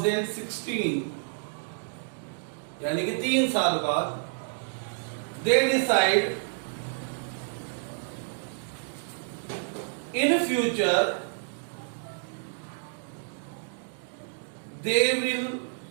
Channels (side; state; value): left; silent; digital silence